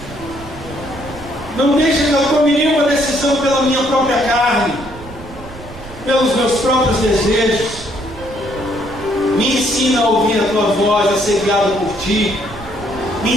Não deixe que eu tome nenhuma decisão pela minha própria carne, pelos meus próprios desejos. Me ensina a ouvir a tua voz, a ser guiado por ti. Me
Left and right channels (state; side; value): noise; right; rumble, 16 dB below the sound